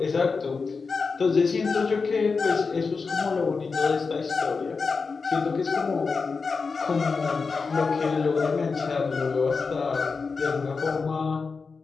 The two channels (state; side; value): quieter; right; 4.7 dB